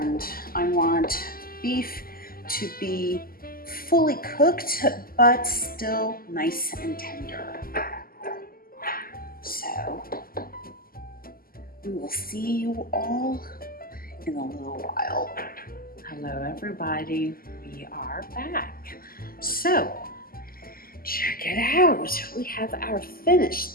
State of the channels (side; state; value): right; late; 0.42 ms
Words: I want beef to be fully cooked, but still nice and tender. So we will see you all in a little while. Hello everybody, we are back. So check it out. We have our